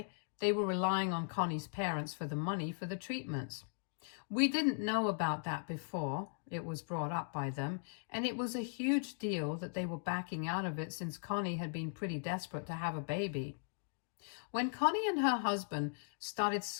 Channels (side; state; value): right; silent; digital silence